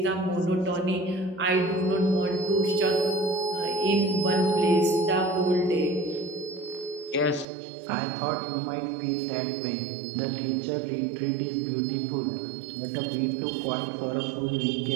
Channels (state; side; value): drops out; left; at 7.5 s